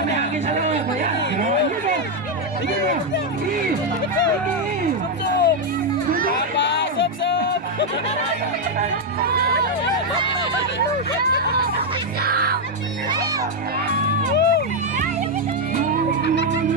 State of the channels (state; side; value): normal; both; correlation 0.02